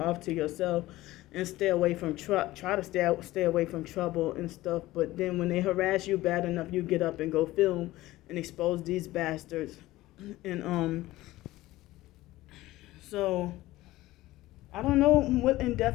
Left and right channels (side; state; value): right; quieter; 17.3 dB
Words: to yourself and stay away from try to stay away from trouble and stuff. But then when they harass you bad enough, you get up and go film and expose these bastards. And so I don't know what